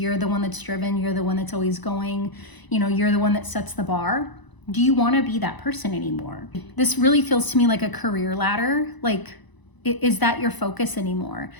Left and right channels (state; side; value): late; right; 1.0 ms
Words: the one that's driven, you're the one that's always going, you're the one that sets the bar? Do you want to be that person anymore? This really feels to me like a career ladder. Like, is that your focus anymore?